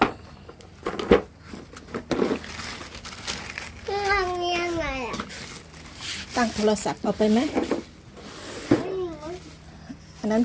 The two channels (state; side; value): identical; both; correlation 1.00